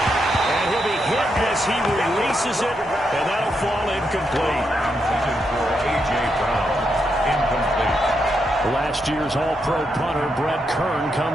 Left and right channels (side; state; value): both; normal; correlation 0.82